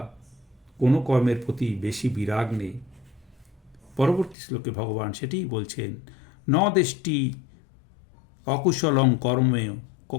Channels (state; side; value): drops out; right; at 4.4 s